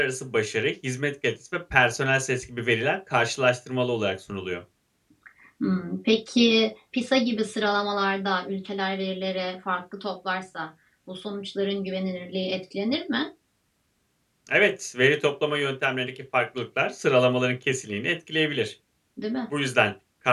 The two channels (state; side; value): identical; both; correlation 1.00